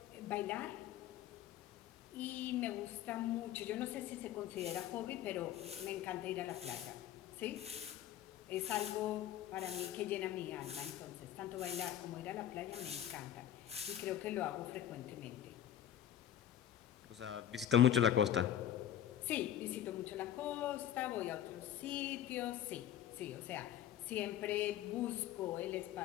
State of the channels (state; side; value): quieter; right; 11.0 dB